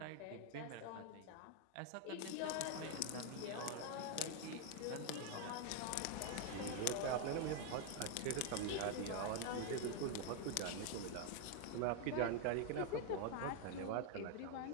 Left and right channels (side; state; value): both; different; correlation 0.01